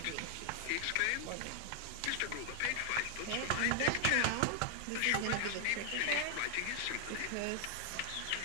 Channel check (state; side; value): different; both; correlation 0.00